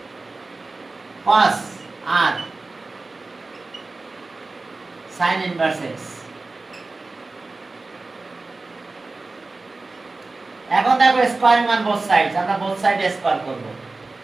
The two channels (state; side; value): quieter; left; 3.5 dB